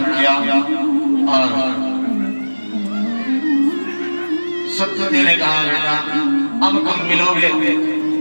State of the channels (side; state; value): both; inverted; correlation -1.00